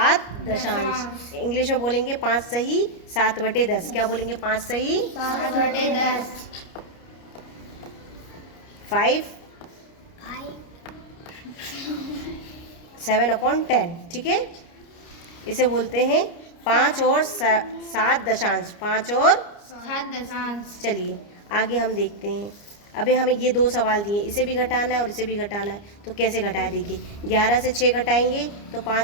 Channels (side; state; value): right; late; 29 ms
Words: दशांश इंग्लिश में बोलेंगे 5 सही 7/10। क्या बोलेंगे? 5 सही 7/10 5 7/10। ठीक है, इसे बोलते हैं 5 और 7 दशांश। 5 और 7 दशांश। चलिए आगे हम देखते हैं। अभी हमें ये 2 सवाल दिए, इसे भी घटाना है और इसे भी घटाना है। तो कैसे घटाया? देखिए 11 से 6 घटाएंगे तो